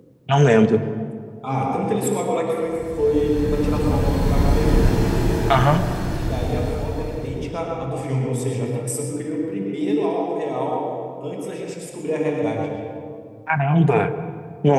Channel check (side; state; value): both; identical; correlation 1.00